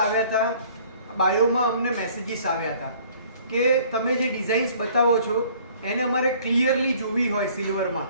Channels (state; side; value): inverted; both; correlation -0.55